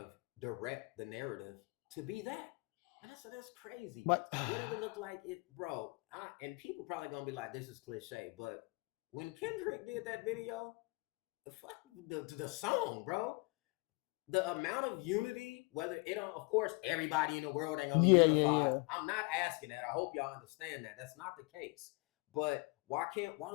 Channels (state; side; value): quieter; right; 28.3 dB